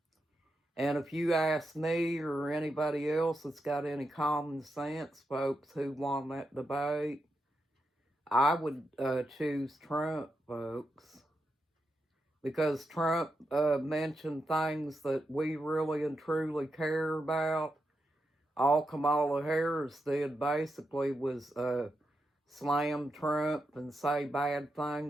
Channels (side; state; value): both; normal; correlation 0.86